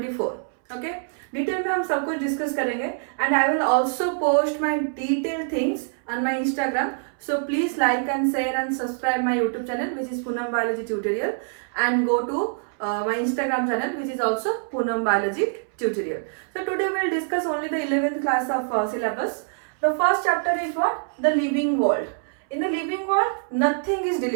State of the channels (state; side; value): silent; left; 62 dB below the other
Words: Okay, detail में हम सब कुछ discuss करेंगे and I will also post my detailed things on my Instagram. So please like and share and subscribe my YouTube channel which is Poonam Biology Tutorial and go to my Instagram channel which is also Poonam Biology Tutorial. So today we will discuss only the 11th class of syllabus. The first chapter is what? The living world. In the living world, nothing is